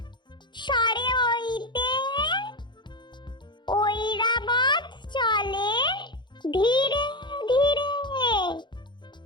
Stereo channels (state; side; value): late; right; 0.22 ms